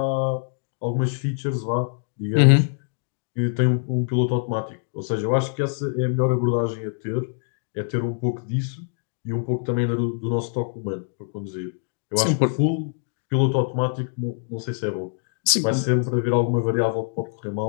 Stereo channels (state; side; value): silent; right; digital silence